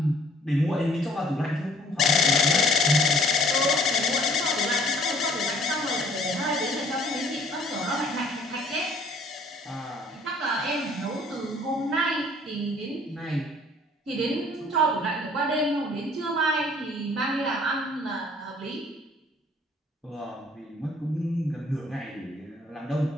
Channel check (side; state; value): both; normal; correlation 0.57